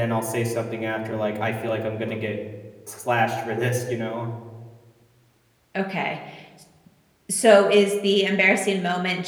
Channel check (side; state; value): both; identical; correlation 1.00